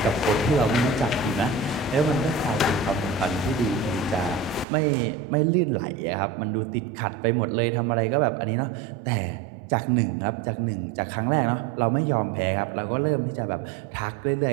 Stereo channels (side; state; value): left; drops out; at 4.7 s